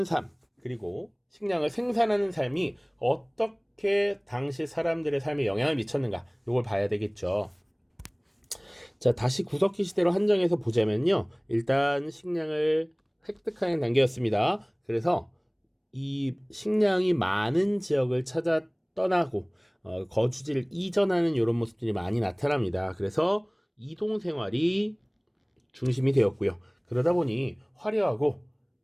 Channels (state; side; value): identical; both; correlation 1.00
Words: 삶, 그리고 식량을 생산하는 삶이 어떻게 당시 사람들의 삶에 영향을 미쳤는가, 이걸 봐야 되겠죠. 자, 다시 구석기 시대로 한정해서 보자면요. 일단 식량을 획득하는 단계였습니다. 그래서 이 식량이 많은 지역을 찾아 떠나고 거주지를 이전하는 이런 모습들이 많이 나타납니다. 그래서 이동 생활이 중심이 되었고요. 그러다 보니 화려하고